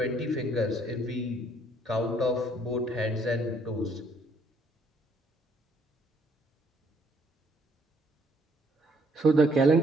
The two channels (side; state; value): both; normal; correlation 0.65